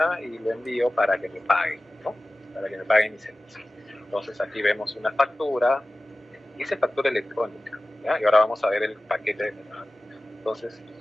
y lo envío para que me paguen, ¿no? Para que me paguen mis servicios. Entonces aquí vemos una factura, dice factura electrónica, ¿ya? Y ahora vamos a ver el paquete de metadatos. Entonces,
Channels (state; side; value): normal; both; correlation 0.96